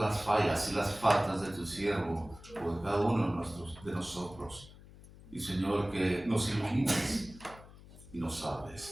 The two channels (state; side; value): noise; left; hum, 19 dB below the sound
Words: fallas y las faltas de tu siervo o de cada uno de nosotros. Y, Señor, que nos ilumines y nos